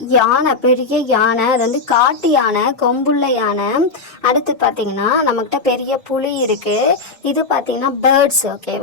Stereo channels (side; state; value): right; quieter; 4.1 dB